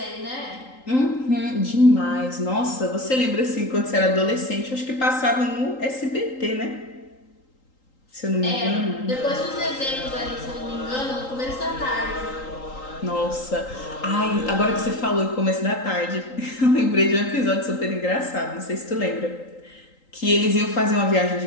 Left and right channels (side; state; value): right; late; 3.8 ms